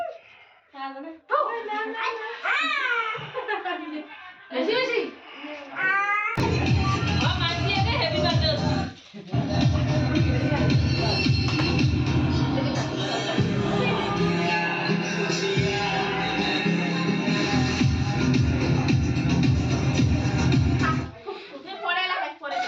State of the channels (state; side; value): identical; both; correlation 1.00